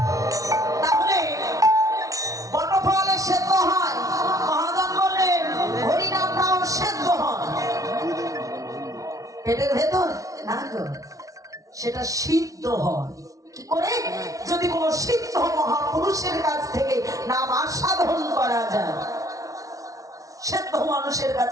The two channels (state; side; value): late; left; 0.17 ms